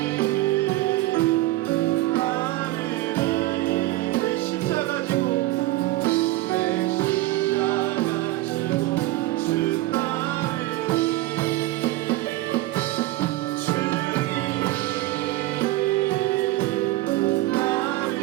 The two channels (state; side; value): quieter; left; 17.7 dB